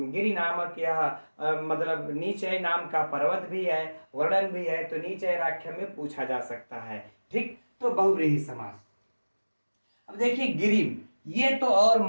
नामक यह मतलब नीचे नाम का पर्वत भी है, वर्णन भी है, तो नीचैराख्य में पूछा जा सकता है, ठीक। तो बहुव्रीहि समास। अब देखिए गिरिम, ये तो और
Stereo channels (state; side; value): inverted; both; correlation -1.00